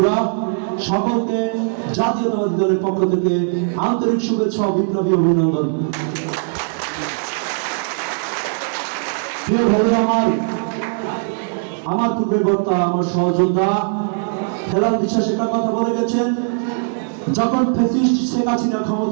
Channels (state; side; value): silent; left; 66 dB below the other